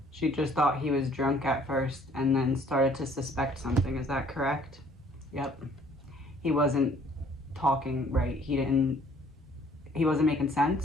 She just thought he was drunk at first and then started to suspect something. Is that correct? Yep. He wasn't talking right. He didn't he wasn't making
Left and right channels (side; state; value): both; normal; correlation 0.59